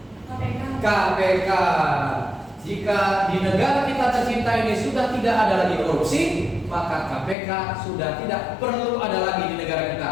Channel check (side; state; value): right; drops out; at 7.4 s